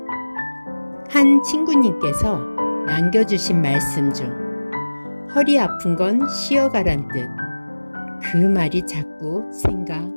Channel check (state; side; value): inverted; both; correlation -1.00